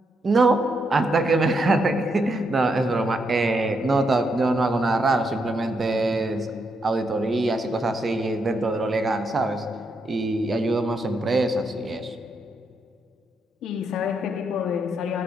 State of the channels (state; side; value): normal; both; correlation 0.79